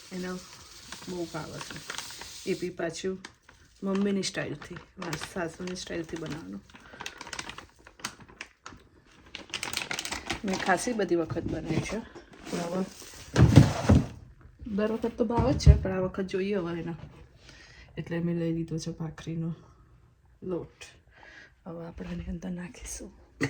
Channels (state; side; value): identical; both; correlation 1.00